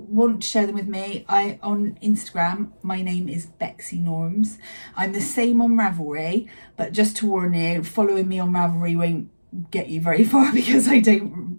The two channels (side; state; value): both; inverted; correlation -1.00